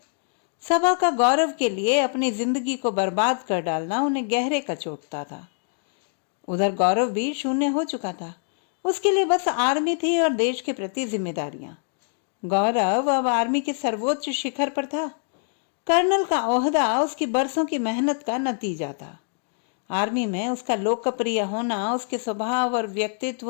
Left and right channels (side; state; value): right; silent; 60 dB below the other